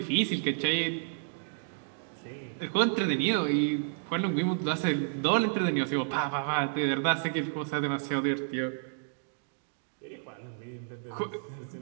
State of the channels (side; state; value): left; silent; digital silence